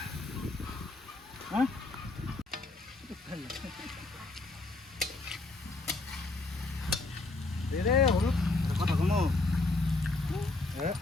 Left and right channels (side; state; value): right; quieter; 3.2 dB